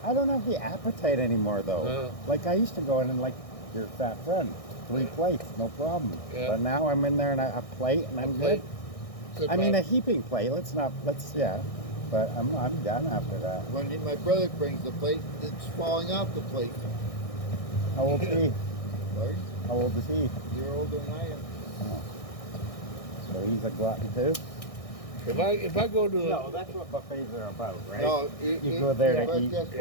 I don't have the appetite anymore, though. No. Like, I used to go in and, like, your fat friend, 3 plates, no problem. Yeah. But now I'm in there and a plate and I'm good. Sit I mean, a back. heaping plate. Yeah. But I'm done after that. My brother brings the plate, it's falling off the plate. How old is he? Right? How old is he? You're older than I am. Oh. So he's a glutton too? If I go to the, No, that's what buffets are about, right? No, You go there to put it eat. this way.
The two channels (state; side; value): late; right; 1.6 ms